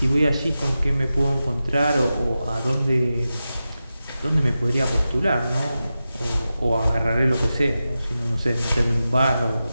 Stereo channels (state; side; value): inverted; both; correlation -0.92